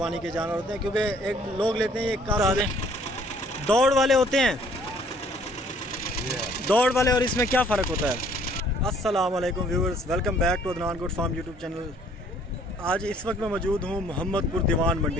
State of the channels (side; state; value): both; normal; correlation 0.59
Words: के जानवर होते हैं, क्योंकि एक लोग लेते हैं, ये काफ़ी दौड़ वाले होते हैं। दौड़ वाले और इसमें क्या फ़र्क होता है? अस्सलाम वालेकुम viewers, welcome back to Adnan good Farm YouTube channel. आज इस वक्त मैं मौजूद हूँ मोहम्मदपुर दीवान